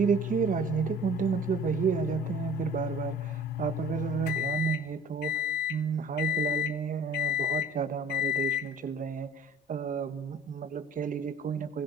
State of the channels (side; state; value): both; normal; correlation 0.48